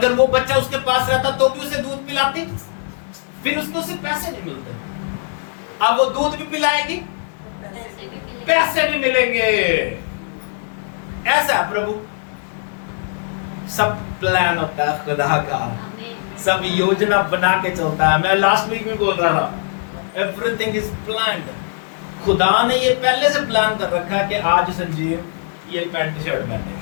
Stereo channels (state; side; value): silent; right; digital silence